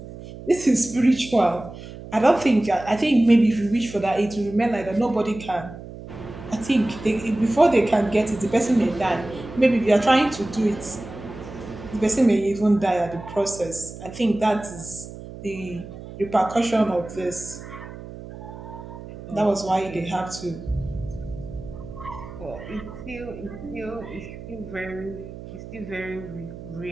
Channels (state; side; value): noise; right; hum, 13 dB below the sound